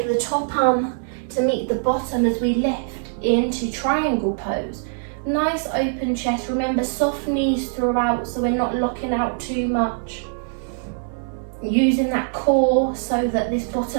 the top arm to meet the bottom as we lift into triangle pose. Nice open chest. Remember, soft knees throughout so we're not locking out too much. Using that core so that this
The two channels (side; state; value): left; silent; 64 dB below the other